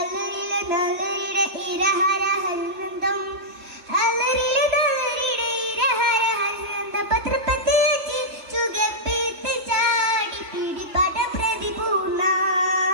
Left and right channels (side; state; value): left; late; 3.0 ms